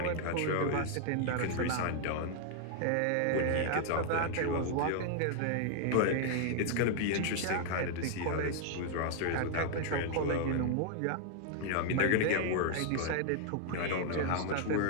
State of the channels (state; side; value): different; both; correlation 0.00